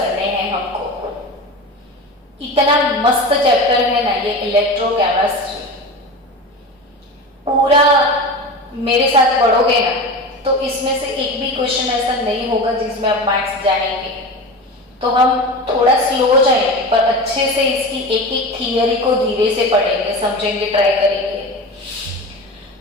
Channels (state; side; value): normal; both; correlation 0.29